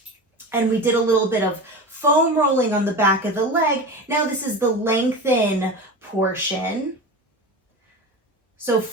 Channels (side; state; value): both; normal; correlation 0.27